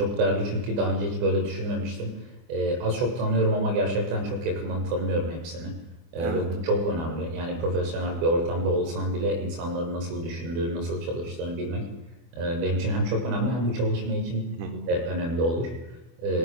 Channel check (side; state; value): left; late; 24 ms